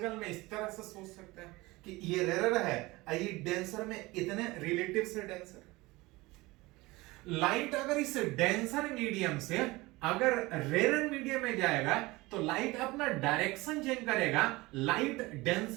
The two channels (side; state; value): left; quieter; 21.4 dB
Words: में इस तरह से सोच सकते हैं कि ये रेयर है, ये डेंसर में इतने रिलेटिव से डेंसर। लाइट अगर इस डेंसर मीडियम से अगर रेयर मीडियम में जाएगा तो लाइट अपना डायरेक्शन चेंज करेगा। लाइट